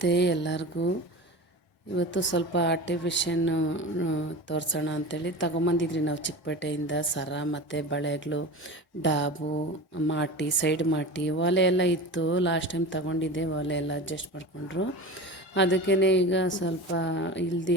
ಎಲ್ಲರಿಗೂ. ಇವತ್ತು ಸ್ವಲ್ಪ ಆರ್ಟಿಫಿಷಿಯನ್ನು ತೋರಿಸೋಣ ಅಂಥೇಳಿ ತಗೊಂಬಂದಿದ್ರಿ ನಾವು ಚಿಕ್ಕಪೇಟೆಯಿಂದ ಸರ ಮತ್ತು ಬಳೆಗಳು, ಡಾಬು, ಮಾಟಿ, ಸೈಡ್ ಮಾಟಿ, ಒಲೆ ಎಲ್ಲ ಇತ್ತು. ಲಾಸ್ಟ್ ಟೈಮ್ ತಗೊಂಡಿದ್ದೆ, ಒಲೆ ಎಲ್ಲ ಅಡ್ಜಸ್ಟ್ ಮಾಡಿಕೊಂಡ್ರು. ಅದಕ್ಕೇ ಈಗ ಸ್ವಲ್ಪ ಇಲ್ದು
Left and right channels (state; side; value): normal; both; correlation 0.31